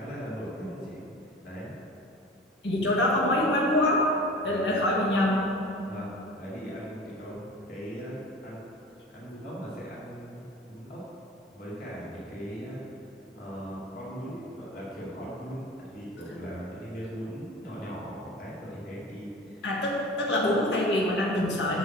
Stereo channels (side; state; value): both; normal; correlation 0.39